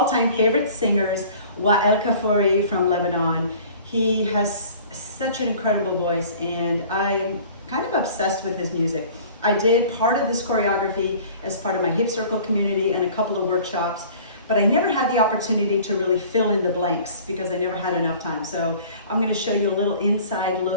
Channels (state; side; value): inverted; both; correlation -0.47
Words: favorite singers, Weal Kafory from Lebanon. He has such an incredible voice and I'm kind of obsessed with his music. I did part of this choreography as part of my hip circle community and a couple of workshops, but I never had the opportunity to really fill in the blanks because I never had enough time. So I'm going to show you a little inside